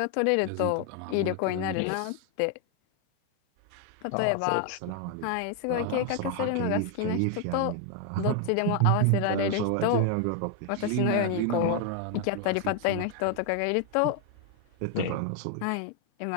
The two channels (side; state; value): both; different; correlation 0.01